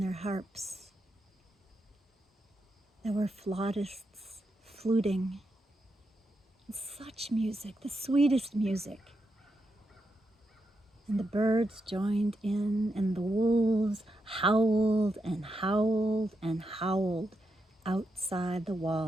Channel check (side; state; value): both; normal; correlation 0.84